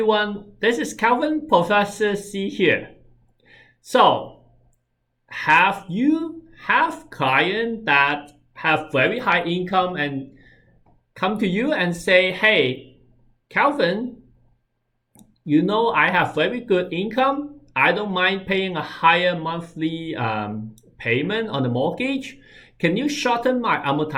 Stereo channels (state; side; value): identical; both; correlation 1.00